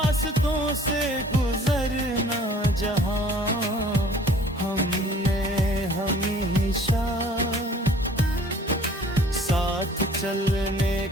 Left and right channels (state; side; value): normal; both; correlation 0.53